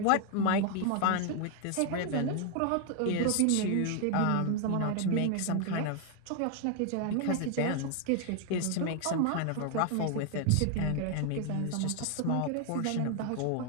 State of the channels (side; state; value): both; different; correlation 0.00